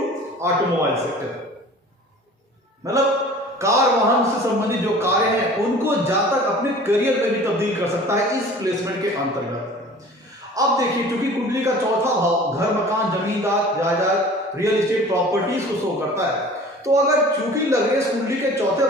automobile sector, मतलब कार वाहन से संबंधित जो कार्य हैं उनको जातक अपने करियर में भी तब्दील कर सकता है इस प्लेसमेंट के अंतर्गत। अब देखिए, क्योंकि कुंडली का चौथा भाव घर मकान जमींदार जायदाद रियल एस्टेट प्रॉपर्टीज को शो करता है, तो अगर चूंकि लग्नेश कुंडली के चौथे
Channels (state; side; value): normal; both; correlation 0.44